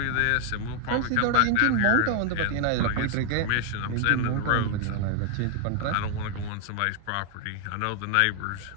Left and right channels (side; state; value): both; different; correlation 0.00